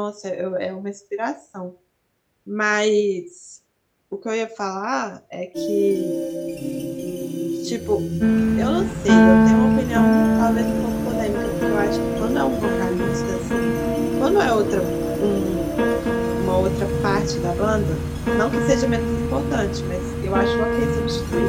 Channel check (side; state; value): both; identical; correlation 1.00